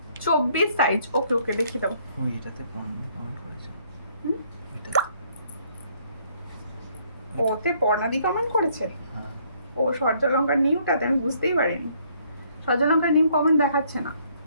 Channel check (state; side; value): inverted; both; correlation -0.65